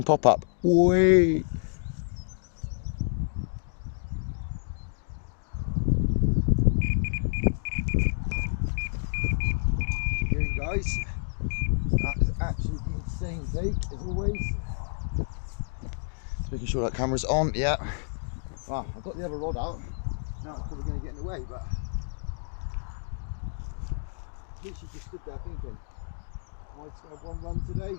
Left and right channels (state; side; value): silent; right; digital silence